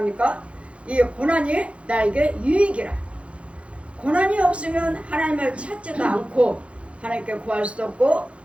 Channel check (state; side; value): late; left; 0.061 ms